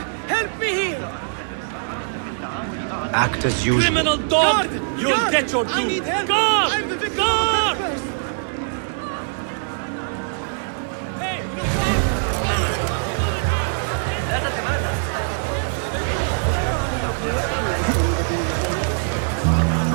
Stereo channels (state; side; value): silent; left; 64 dB below the other